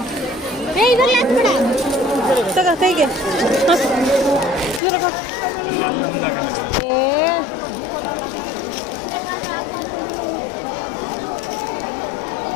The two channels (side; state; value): right; drops out; at 4.8 s